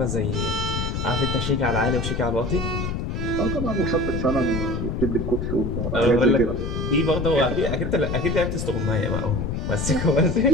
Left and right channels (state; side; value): noise; left; rumble, 2 dB below the sound